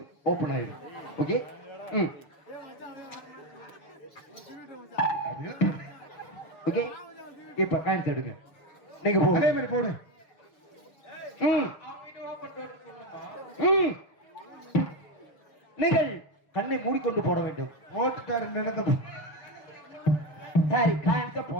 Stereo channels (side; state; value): right; late; 6.8 ms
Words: ஓபன் ஆயிடும். ஓகே. ஓகே. இப்ப காயின்ஸ் எடுங்க. நீங்க போடுங்க. அதே மாதிரி போடு. நீங்கள் கண்ணை மூடிக்கொண்டு போட வேண்டும். ஓட்டுக்காரு நடந்த சரி காயின்ஸ